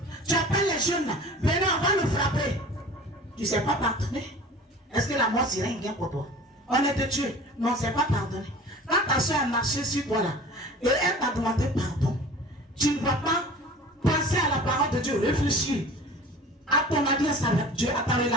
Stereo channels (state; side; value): normal; both; correlation 0.41